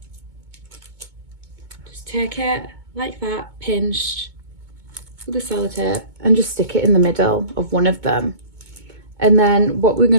Just take it like that, pinched with the sellotape, and just stick it in the middle of one of them. And then what we're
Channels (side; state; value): left; late; 2.2 ms